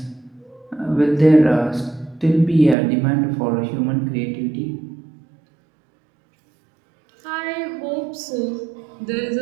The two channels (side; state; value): left; drops out; at 2.8 s